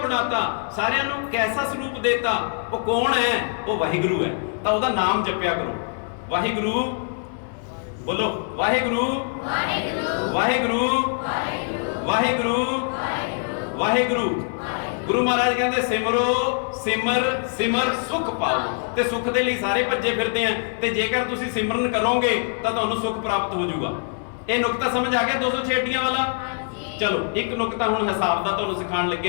ਬਣਾਤਾ। ਸਾਰਿਆਂ ਨੂੰ ਕੈਸਾ ਸਰੂਪ ਦੇਤਾ, ਉਹ ਕੌਣ ਹੈ? ਉਹ ਵਾਹਿਗੁਰੂ ਹੈ। ਤਾਂ ਉਹਦਾ ਨਾਮ ਜਪਿਆ ਕਰੋ, ਵਾਹਿਗੁਰੂ। ਬੋਲੋ ਵਾਹਿਗੁਰੂ ਵਾਹਿਗੁਰੂ ਵਾਹਿਗੁਰੂ ਵਾਹਿਗੁਰੂ ਵਾਹਿਗੁਰੂ। ਗੁਰੂ ਮਹਾਰਾਜ ਕਹਿੰਦੇ ਸਿਮਰੋ ਸਿਮਰ ਸਿਮਰ ਸੁਖ ਪਾਓ। ਤੇ ਸੁਖ ਦੇ ਲਈ ਸਾਰੇ ਭੱਜੇ ਫਿਰਦੇ ਆ, ਤੇ ਜੇਕਰ ਤੁਸੀਂ ਸਿਮਰਨ ਕਰੋਗੇ ਤਾਂ ਤੁਹਾਨੂੰ ਸੁਖ ਪ੍ਰਾਪਤ ਹੋ ਜਾਊਗਾ। ਇਹ ਨੁਕਤਾ ਸਮਝ ਆ ਗਿਆ 206 ਵਾਲਾ? ਚਲੋ ਇੱਕ ਨੁਕਤਾ ਹੁਣ ਹਿਸਾਬ ਦਾ ਤੁਹਾਨੂੰ ਸਿਖਾਉਣ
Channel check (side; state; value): right; silent; 63 dB below the other